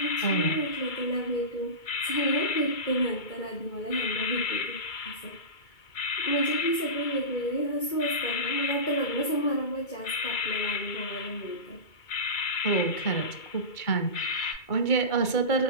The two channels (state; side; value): late; right; 2.3 ms